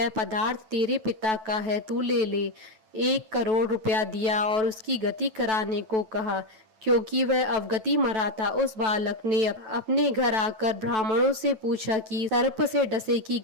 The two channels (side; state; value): left; late; 9.2 ms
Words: पदार्थ तेरे पिता का है, तू ले ले। 1 करोड़ रुपया दिया और उसकी गति कराने को कहा। क्योंकि वह अवगति मरा था, उस बालक ने अपने घर आकर ब्राह्मणों से पूछा कि सर्प से डसे की